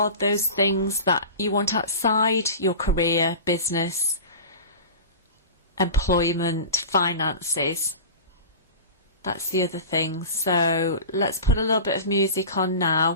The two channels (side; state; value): both; inverted; correlation -0.33